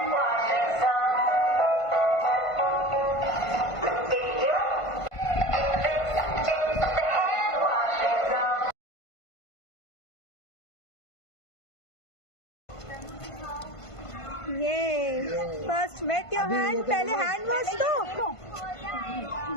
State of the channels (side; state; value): right; late; 1.5 ms